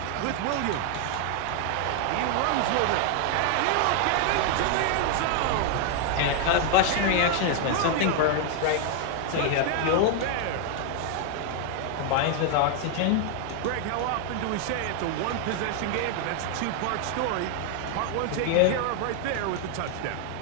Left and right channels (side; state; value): both; different; correlation 0.00